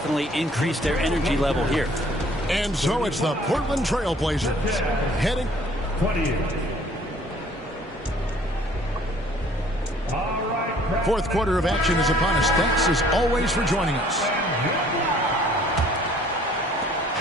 increased their energy level here. And so it's the Portland Trail Blazers heading. 28. Fourth quarter of action is upon us. Thanks as always for joining us.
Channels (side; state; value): both; normal; correlation 0.57